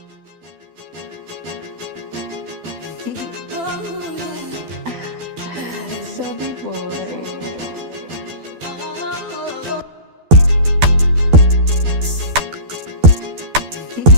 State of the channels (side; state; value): left; late; 12 ms